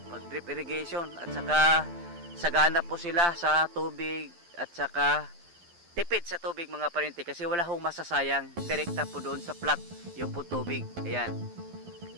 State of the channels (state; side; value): late; left; 12 ms